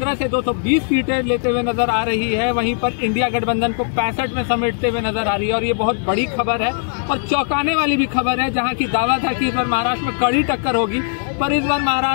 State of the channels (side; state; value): right; silent; digital silence